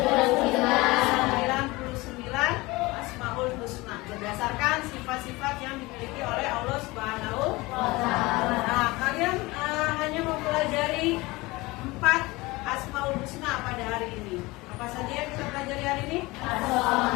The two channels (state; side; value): quieter; right; 21.9 dB